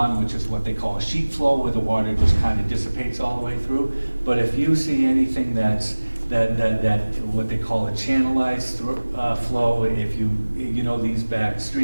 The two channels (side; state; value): both; inverted; correlation -1.00